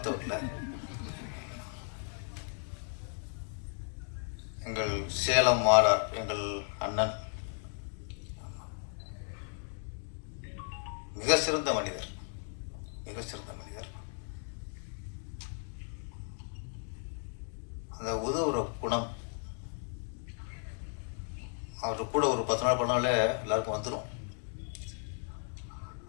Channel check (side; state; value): right; silent; 54 dB below the other